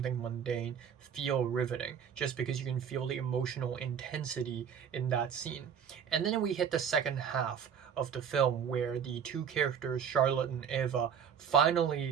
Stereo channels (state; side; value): quieter; left; 7.8 dB